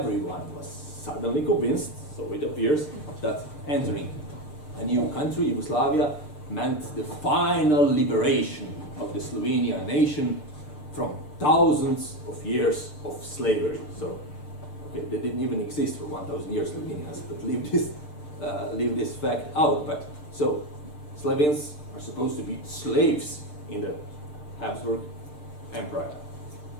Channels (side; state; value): right; late; 6.6 ms